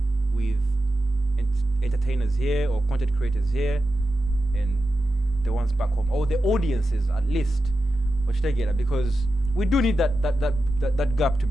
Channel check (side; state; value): both; normal; correlation 0.91